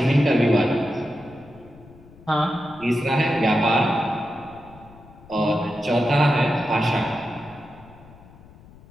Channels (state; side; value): noise; left; rumble, 23 dB below the sound